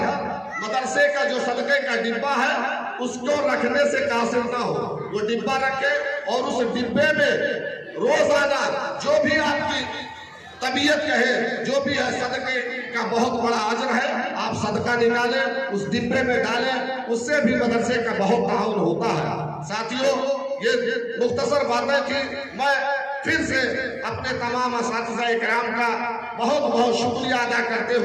مدرسے کا جو صدقے کا ڈبہ ہے اس کو رکھنے سے قاصر نہ ہو، وہ ڈبہ رکھے اور اس ڈبے میں روزانہ جو بھی آپ کی طبیعت کہے، جو بھی ہے، صدقے کا بہت بڑا اجر ہے، آپ صدقہ نکالیں، اس ڈبے میں ڈالیں، اس سے بھی مدرسے کا بہت تعاون ہوتا ہے۔ ساتھیوں، یہ مختصر باتیں تھی، میں پھر سے اپنے تمام اساتذہ اکرام کا بہت بہت شکریہ ادا کرتے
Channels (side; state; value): both; identical; correlation 1.00